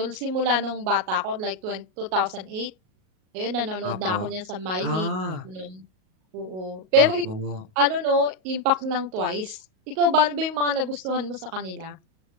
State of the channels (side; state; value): left; late; 38 ms